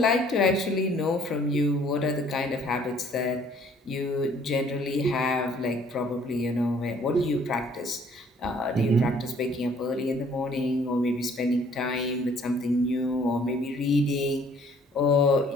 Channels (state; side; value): normal; both; correlation 0.59